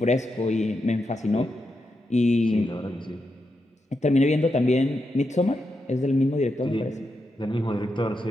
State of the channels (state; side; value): normal; both; correlation 0.85